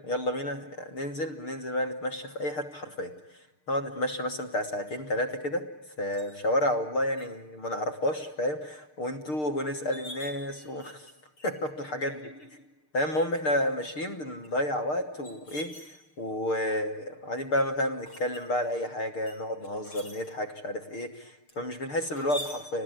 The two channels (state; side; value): late; right; 6.6 ms